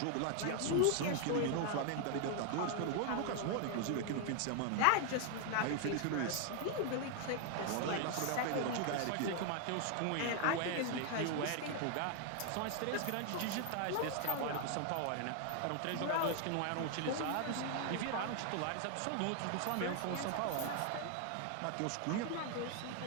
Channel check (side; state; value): both; different; correlation 0.00